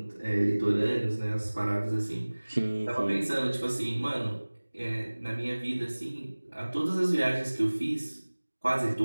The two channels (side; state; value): both; inverted; correlation -1.00